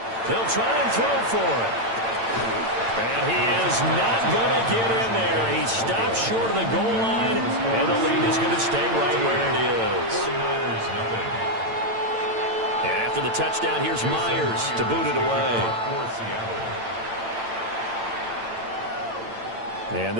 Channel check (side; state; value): left; late; 8.9 ms